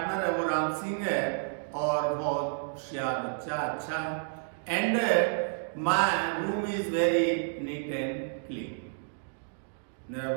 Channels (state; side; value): silent; left; digital silence